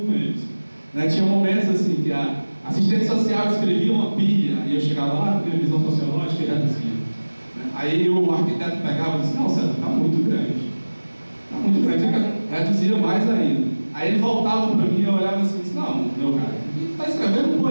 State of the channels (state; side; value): inverted; both; correlation -1.00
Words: com eles. Tinha momentos assim que a assistente social escrevia uma pilha, e eu chegava lá, com a visão sociológica, e reduzia. Aí o arquiteto pegava e disse: não, César, está muito grande. Está muito grande, reduzia mais ainda. Aí ele voltava para mim e eu olhava assim e disse: não, meu cara, está escrevendo